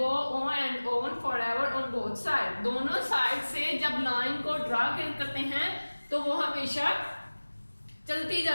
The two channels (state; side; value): inverted; both; correlation -1.00